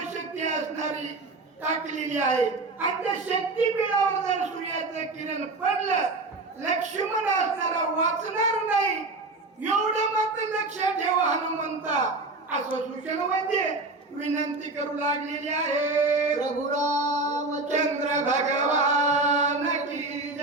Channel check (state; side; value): quieter; left; 3.3 dB